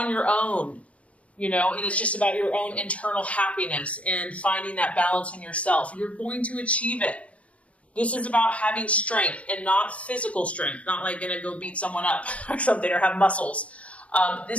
your own, and it's just about your own internal happiness and finding that balance in yourself, you're going to achieve it. This is about having strength and not physical strength, not like going to go beat someone up or something or have muscles.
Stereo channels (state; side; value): late; right; 0.064 ms